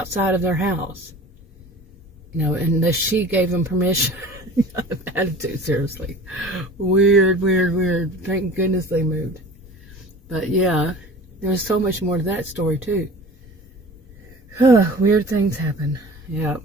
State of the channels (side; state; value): both; normal; correlation 0.41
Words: of their house, you know, unless she gave them permission. Attitude, seriously. Weird. Thank goodness they moved. But yeah, there was so much more to that story too. Weird things happen. Yeah.